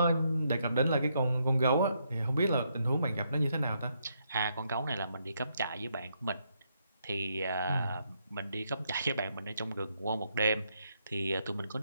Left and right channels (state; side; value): inverted; both; correlation -0.76